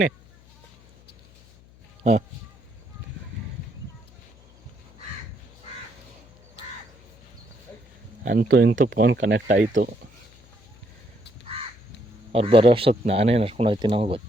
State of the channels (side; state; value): left; noise; hum, 26 dB below the sound